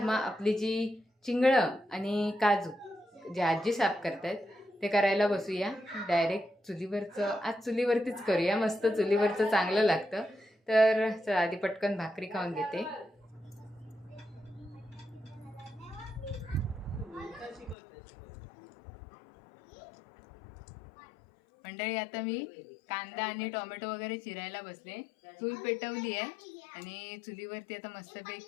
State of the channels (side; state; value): right; drops out; at 17.8 s